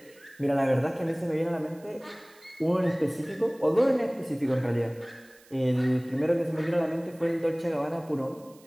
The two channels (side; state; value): right; noise; hiss, 27 dB below the sound